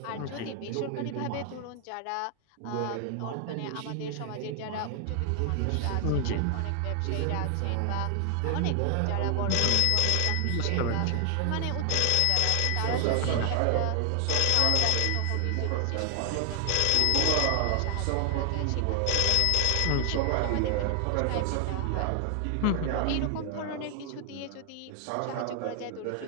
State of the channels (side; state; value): both; different; correlation 0.00